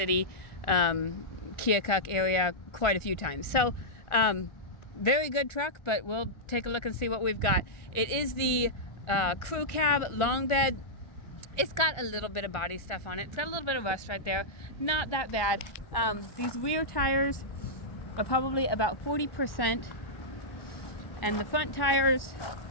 Keokuk area, quite a few times. So very good truck, but we'll take a look and see what we've got. It is the crew cab long bed. It's got a little bit of body stuff on it. It's got a little bit of rust right there. Not that bad. These rear tires are probably about 40%, and the front tires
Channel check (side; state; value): right; late; 1.4 ms